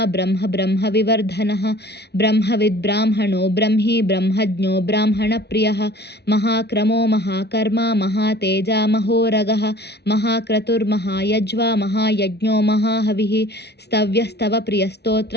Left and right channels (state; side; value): late; right; 0.49 ms